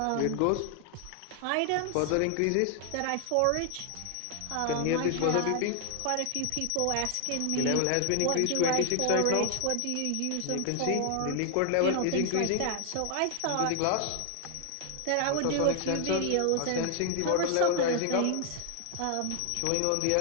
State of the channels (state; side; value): different; both; correlation 0.00